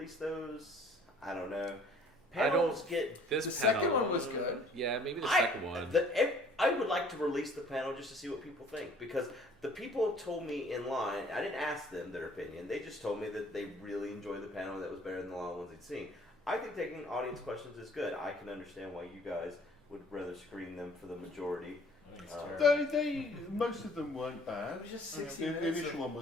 those, I don't know. Panels get this The panel, second one was good. Yeah, maybe the second one. I would like to release the panel just to see what people think, because the people told me in line, I didn't ask them their opinion, they just told me that they really enjoyed the panel, that was better than the long ones they'd seen. I think taking audience questions is good. I can understand why you guys would rather screen them for the majority. I think it's terrible. They most of them weren't bad. It was just 60 The minutes. initial one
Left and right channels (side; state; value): both; normal; correlation 0.55